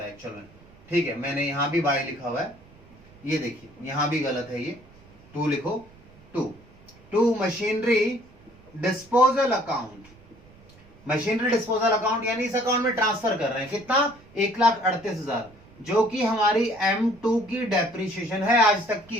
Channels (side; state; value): right; noise; rumble, 26 dB below the sound